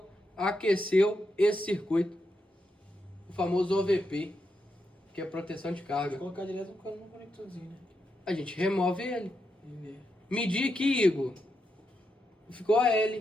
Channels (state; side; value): normal; both; correlation 0.84